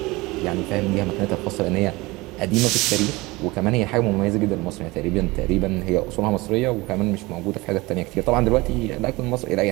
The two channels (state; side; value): quieter; left; 22.1 dB